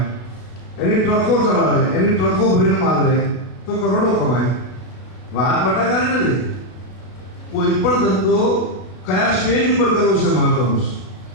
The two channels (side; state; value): right; late; 33 ms